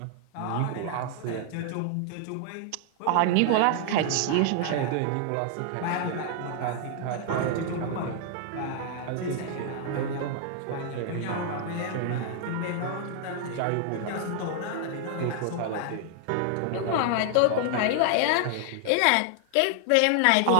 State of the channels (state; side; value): different; both; correlation 0.00